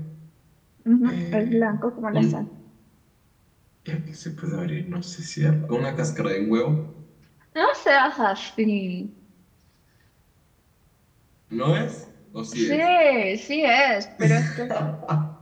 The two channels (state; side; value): identical; both; correlation 1.00